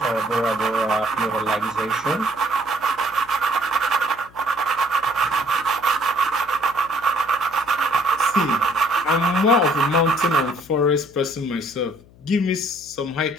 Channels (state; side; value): noise; left; hum, 25 dB below the sound